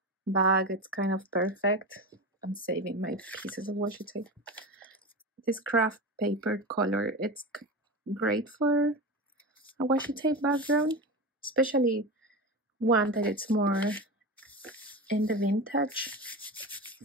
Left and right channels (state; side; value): normal; both; correlation 0.24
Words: bag, it's kind of perfect. I'm saving my pieces of washi tape. This craft paper color, it's great for a washi tape background. Especially one that it's more in the vintage